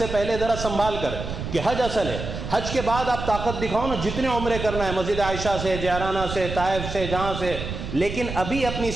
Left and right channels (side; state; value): right; noise; rumble, 6 dB below the sound